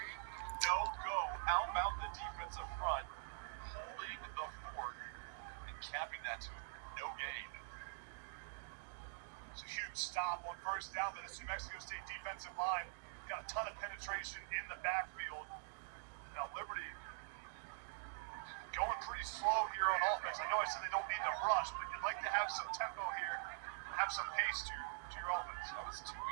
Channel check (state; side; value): silent; left; digital silence